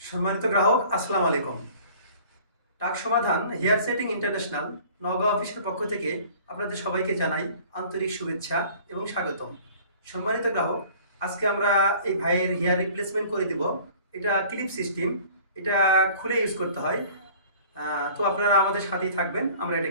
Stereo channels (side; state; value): both; inverted; correlation -0.49